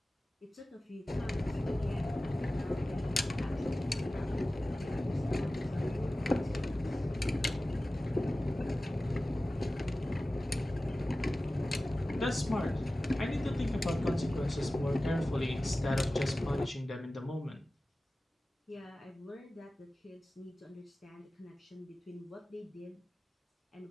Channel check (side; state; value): both; normal; correlation 0.96